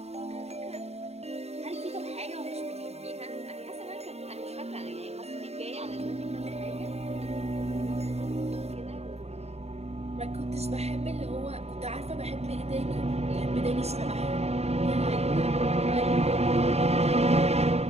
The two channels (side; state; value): left; late; 0.31 ms